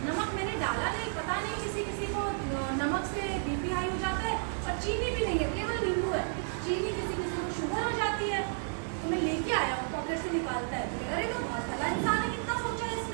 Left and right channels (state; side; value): silent; left; digital silence